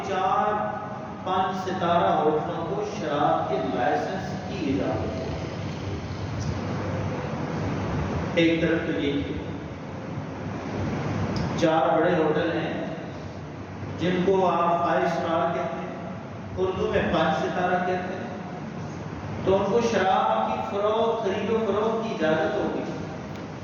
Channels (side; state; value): both; identical; correlation 1.00